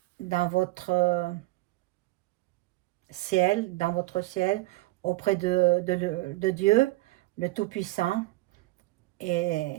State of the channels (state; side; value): quieter; left; 19.8 dB